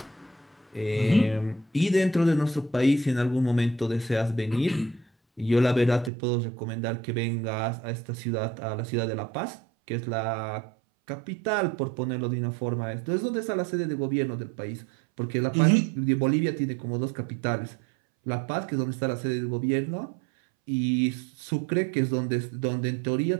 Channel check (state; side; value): drops out; left; at 6.1 s